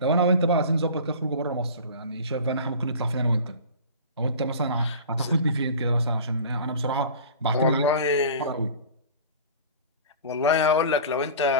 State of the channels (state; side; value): inverted; both; correlation -0.38